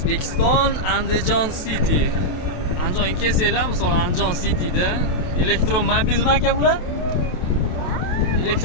Andijon City. Andijonga kelsanglar, misol Andijon Cityda elektromobilmi aka bular?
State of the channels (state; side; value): late; right; 28 ms